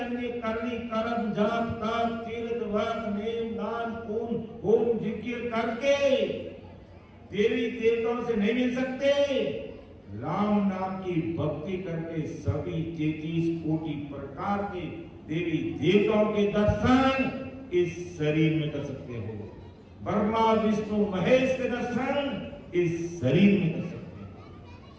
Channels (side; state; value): both; identical; correlation 1.00